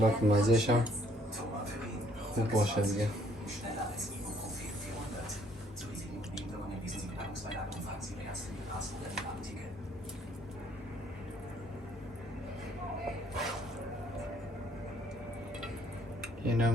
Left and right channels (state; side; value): normal; both; correlation 0.64